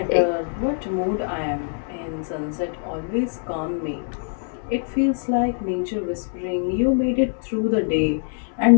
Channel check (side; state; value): right; silent; 60 dB below the other